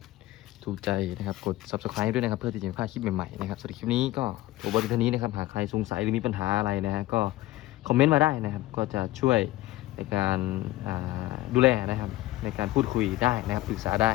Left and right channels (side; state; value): right; quieter; 16.9 dB